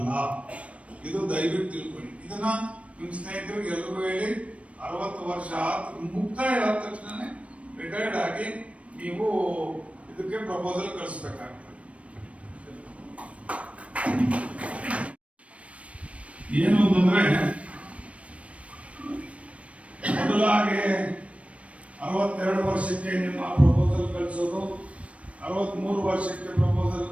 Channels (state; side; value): late; left; 0.063 ms